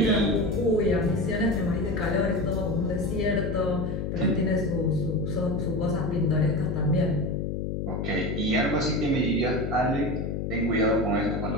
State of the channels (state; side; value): noise; left; hum, 2 dB below the sound